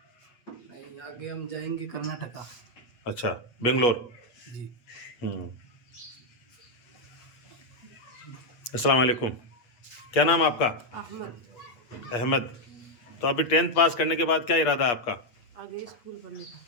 नहीं, आगे हम जाएंगे कर्नाटका। अच्छा, बेंगलोर। जी। अस्सलाम वालेकुम। क्या नाम आपका? अहमद। अहमद। तो अभी 10th पास करने के बाद क्या इरादा है आपका? आगे स्कूल पढ़ने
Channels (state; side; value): late; right; 8.4 ms